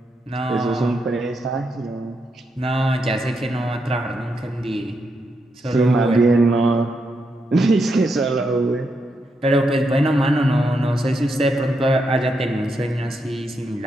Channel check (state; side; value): normal; both; correlation 0.82